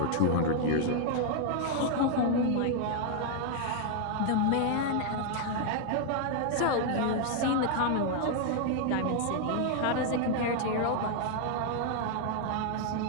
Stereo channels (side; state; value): both; different; correlation 0.00